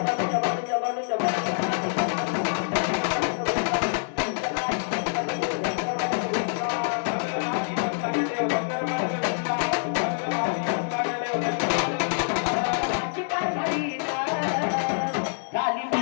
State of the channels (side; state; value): right; silent; digital silence